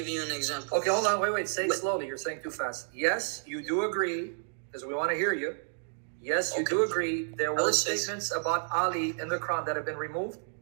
you an example. Okay, hold on, wait, say it slowly. You're saying too fast. Yes, you do agree, because we want to hear you. Yes, you do agree there were statements about Ali in the Quran that have been removed?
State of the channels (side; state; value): left; silent; digital silence